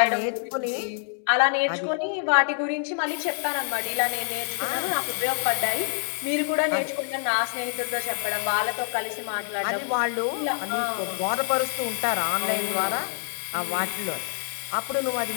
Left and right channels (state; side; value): silent; right; 57 dB below the other